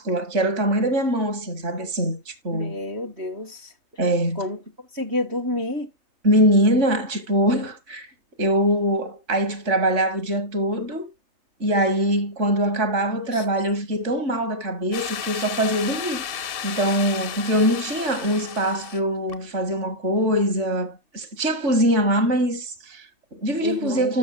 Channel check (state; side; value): late; left; 3.2 ms